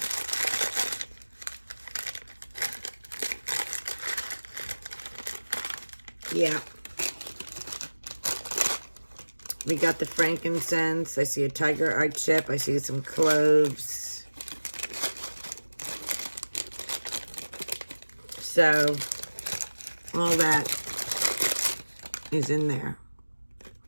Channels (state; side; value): inverted; both; correlation -1.00